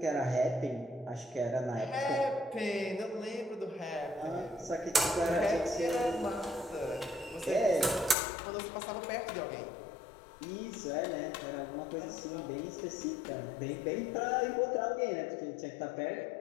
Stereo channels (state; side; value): drops out; right; at 8.2 s